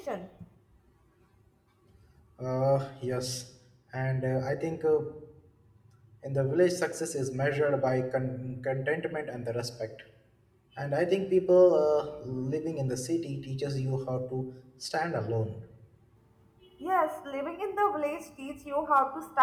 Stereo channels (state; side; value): identical; both; correlation 1.00